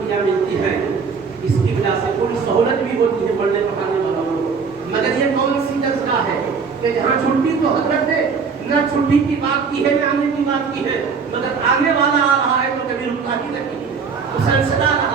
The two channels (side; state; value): left; quieter; 5.5 dB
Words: ملتی ہیں. اس کی وجہ سے کوئی سہولت بھی ہوتی ہے پڑھنے پڑھانے والوں کو. مگر یہ کون سی درسگاہ ہے کہ جہاں چھٹی تو حضرت نے نہ چھٹی کی بات کی ہے نہ آنے کی بات کی ہے, مگر آنے والا آ رہا ہے تو کبھی رکتا ہی نہیں, مسلسل آ